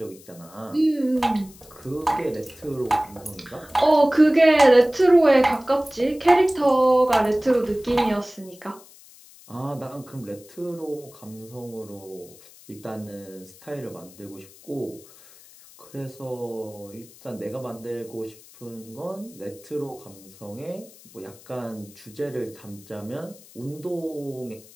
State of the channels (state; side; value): noise; left; hiss, 23 dB below the sound